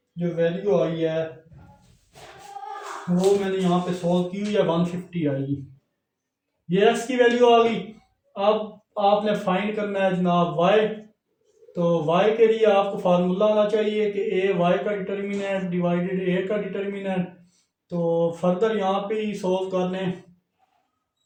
जो वैल्यू आई है वो मैंने यहाँ पे सोल्व की हुई है, 150 आएगी। ये एक्स की वैल्यू आ गई। अब आपने फाइंड करना है जनाब वाई। तो वाई के लिए आपको फार्मूला आना चाहिए कि ए वाई का डिटर्मिनेंट डिवाइडेड ए का डिटर्मिनेंट। तो फर्दर यहाँ पे ही सोल्व कर लें।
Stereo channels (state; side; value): identical; both; correlation 1.00